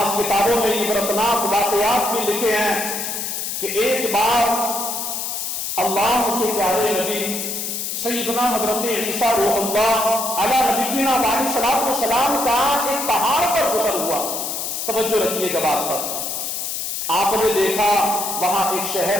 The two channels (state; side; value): noise; left; hiss, 3 dB below the sound